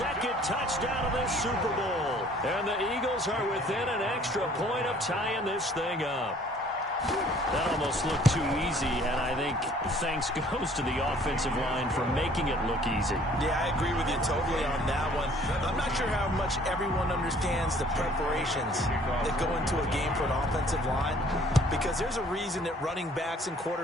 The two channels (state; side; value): normal; both; correlation 0.56